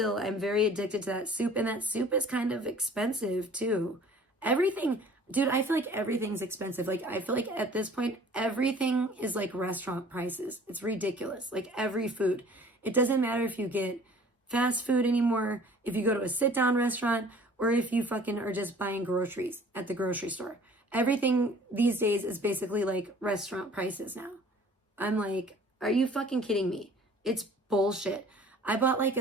very addicted to that soup. And that soup is kind of expensive too. Everything, dude, I feel like everything's expensive. Like, I feel like at this point, everything is like restaurant prices. It's ridiculous. Like every food. It doesn't matter if you get fast food anymore, if you go to a sit down restaurant, or if you fucking are just buying groceries at the grocery store. Everything these days is basically like restaurant prices now. I'm like, are you fucking kidding me? It's bullshit. I bought like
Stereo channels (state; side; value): normal; both; correlation 0.50